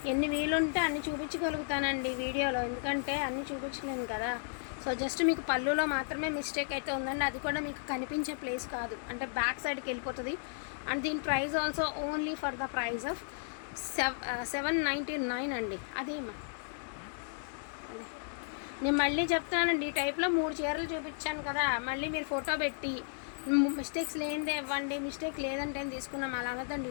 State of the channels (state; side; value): silent; right; digital silence